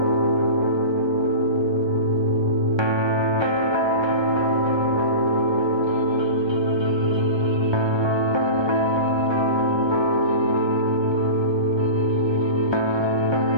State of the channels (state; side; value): late; left; 1.3 ms